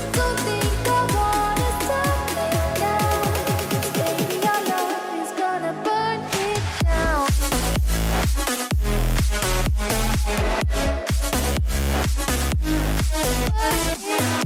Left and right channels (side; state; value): both; identical; correlation 1.00